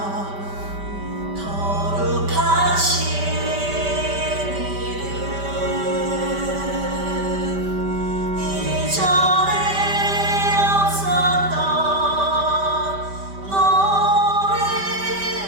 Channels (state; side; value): late; left; 5.1 ms